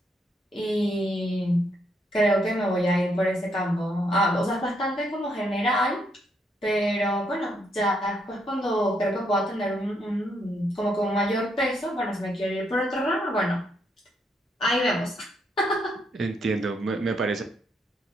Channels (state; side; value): normal; both; correlation 0.75